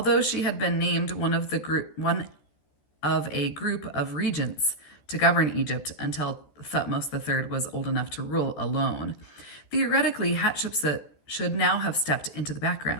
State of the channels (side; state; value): right; late; 14 ms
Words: she had been named one of a group of regents to govern Egypt until Thutmose III was old enough to rule alone. Theoretically, Hatshepsut should now have stepped into the